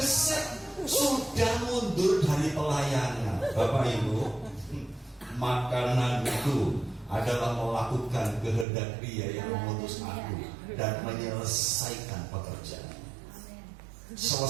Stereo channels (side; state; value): left; drops out; at 8.7 s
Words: sudah mundur dari pelayanan. Bapak Ibu, makanan itu adalah melakukan kehendak Dia yang mengutus aku dan menyelesaikan pekerjaan.